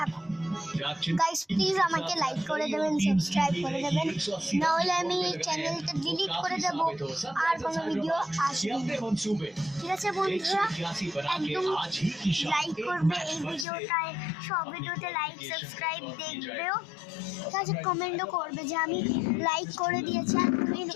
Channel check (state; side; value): drops out; right; at 13.7 s